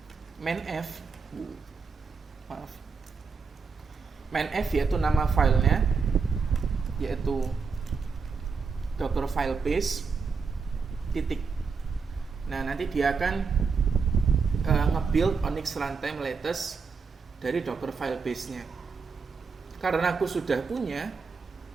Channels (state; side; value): quieter; left; 5.1 dB